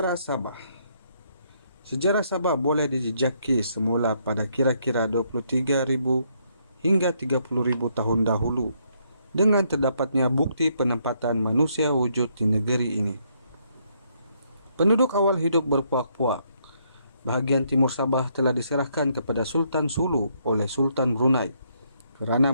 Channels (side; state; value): both; inverted; correlation -0.72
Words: Sabah. Sejarah Sabah boleh dijejaki semula pada kira-kira 23,000 hingga 30,000 tahun dahulu dengan terdapatnya bukti penempatan manusia wujud di negeri ini. Penduduk awal hidup berpuak-puak. Bahagian timur Sabah telah diserahkan kepada Sultan Sulu oleh Sultan Brunei kerana